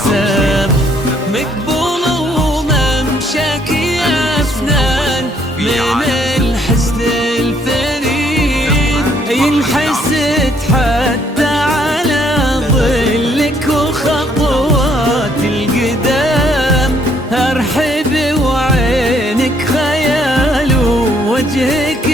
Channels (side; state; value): both; normal; correlation 0.67